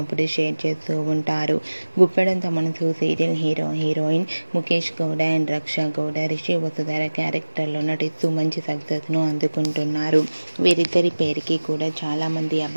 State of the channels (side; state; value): both; inverted; correlation -1.00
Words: షేర్ చేస్తూ ఉంటారు. Guppedantha Manasu serial heroine Mukesh Gowda and Raksha Gowda Rishi Vasudhara క్యారెక్టర్లో నటిస్తూ మంచి సక్సెస్ను అందుకుంటున్నారు. వీరిద్దరి పేరుకి కూడా చాలామంది